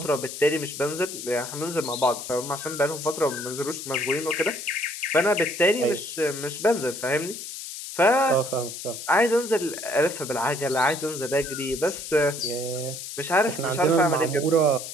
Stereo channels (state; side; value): noise; left; hiss, 9 dB below the sound